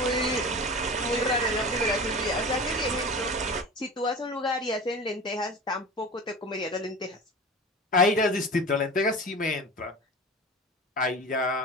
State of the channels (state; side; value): normal; both; correlation 0.34